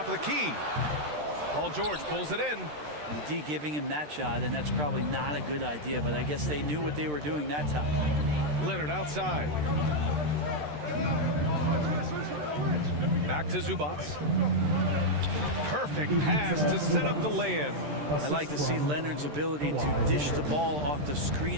of the key. Paul George pulls it in. The D giving him that shot, and that's probably not a good idea, but I guess they knew what they were doing that time. Leonard outside. Back to Zubats. Perfect pass to set up the lay-in. I like to see Leonard's ability to dish the ball off the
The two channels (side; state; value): left; late; 13 ms